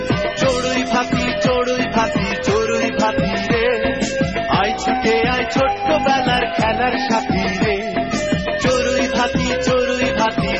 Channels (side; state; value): both; identical; correlation 1.00